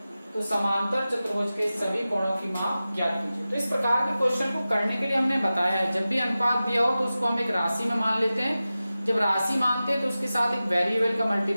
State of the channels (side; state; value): both; inverted; correlation -0.95